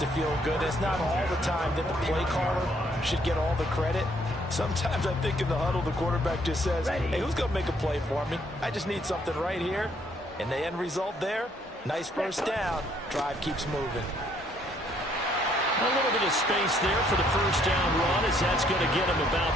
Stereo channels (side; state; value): both; normal; correlation 0.67